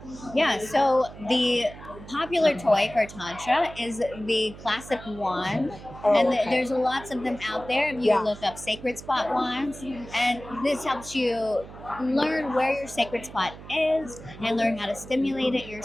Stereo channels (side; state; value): right; noise; hum, 16 dB below the sound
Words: Yeah, so the popular toy for Tantra is the classic wand. And there's lots of them out there. If you look up sacred spot wands, and this helps you learn where your sacred spot is and learn how to stimulate it